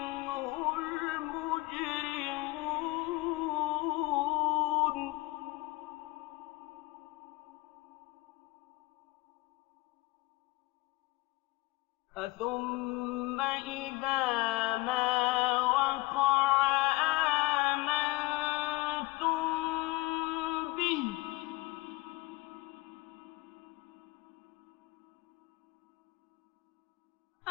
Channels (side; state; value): right; quieter; 21.5 dB